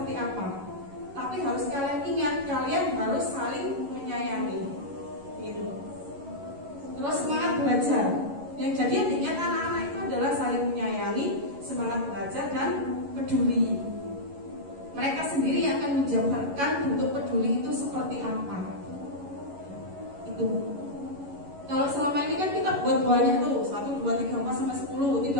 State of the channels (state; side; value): late; left; 11 ms